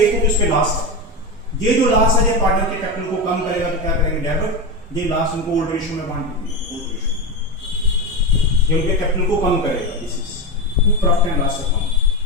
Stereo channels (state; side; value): normal; both; correlation 0.17